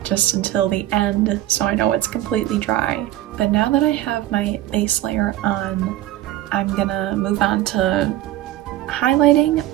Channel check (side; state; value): left; quieter; 14.3 dB